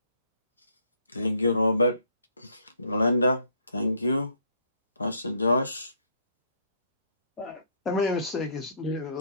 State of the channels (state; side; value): inverted; both; correlation -0.64